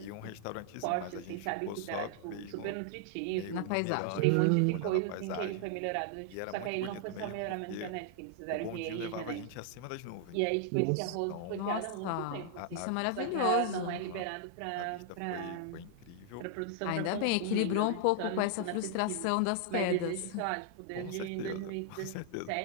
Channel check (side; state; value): both; different; correlation -0.01